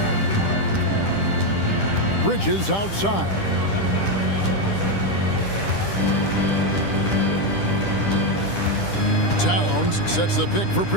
Bridges outside. Towns sets the pick for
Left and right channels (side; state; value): right; late; 10 ms